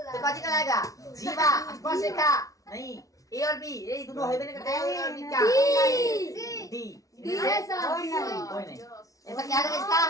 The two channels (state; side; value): late; right; 0.17 ms